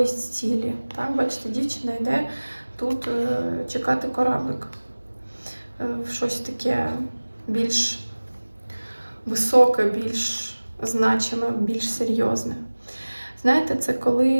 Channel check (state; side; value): inverted; both; correlation -1.00